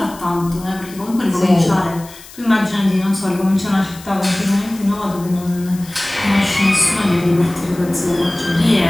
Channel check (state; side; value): noise; left; hiss, 19 dB below the sound